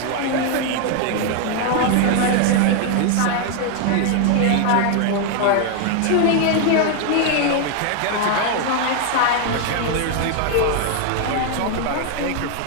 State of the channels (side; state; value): both; different; correlation 0.00